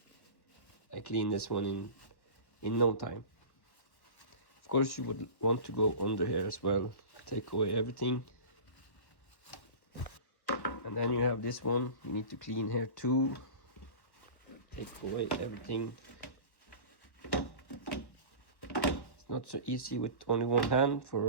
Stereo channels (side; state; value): right; late; 1.1 ms